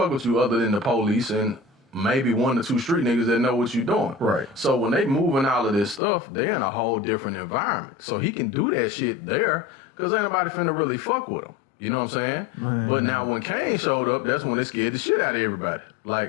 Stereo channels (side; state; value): right; drops out; at 6.0 s